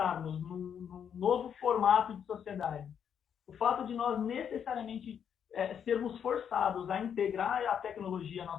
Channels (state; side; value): quieter; right; 8.1 dB